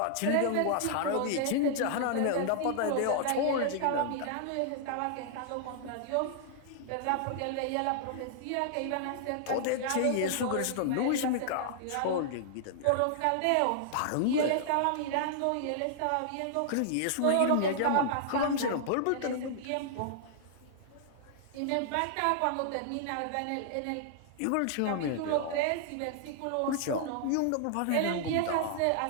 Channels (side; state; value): both; different; correlation -0.01